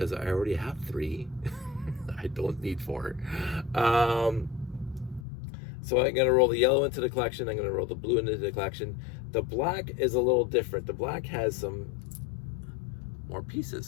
I already have 3. I don't need 4. So I'm going to roll the yellow into the collection. I'm going to roll the blue into the collection. The black is a little different. The black has some more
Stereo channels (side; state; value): right; drops out; at 5.2 s